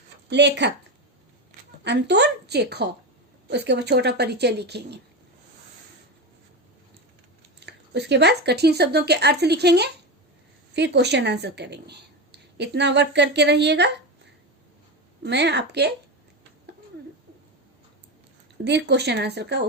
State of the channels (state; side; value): normal; both; correlation 0.18